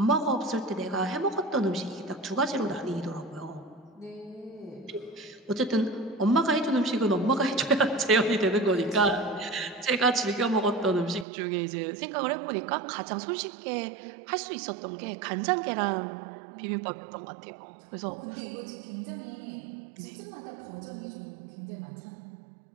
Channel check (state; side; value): drops out; left; at 11.2 s